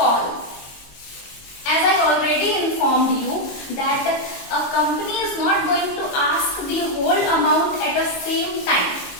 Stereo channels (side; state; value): right; late; 22 ms